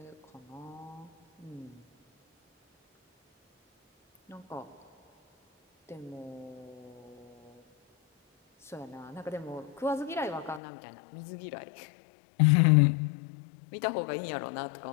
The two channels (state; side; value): drops out; right; at 10.6 s